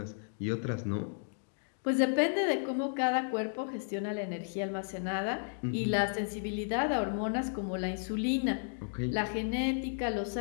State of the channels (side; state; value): right; silent; digital silence